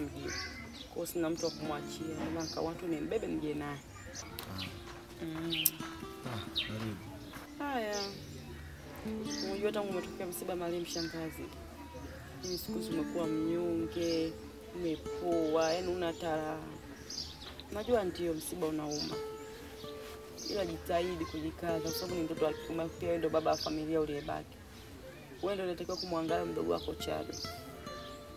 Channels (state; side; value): identical; both; correlation 1.00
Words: Kwa sina mtu wa kumwachia. Ndio nikawa watu nimbebe nije naye. Karibu. Haya. Unajua tangu umetokea msiba Mariam shangazi. Mimi siku zimekuwa mnyonge, umepoa, yaani una tara. Najua ndio msiba unauma. Ila jitahidi kujikaza kwa sababu ni mtoto wa kiume pia wewe ndio baba wa familia uliyebaki. Wewe ndio unatakiwa kumwangalia mdogo wako Chado.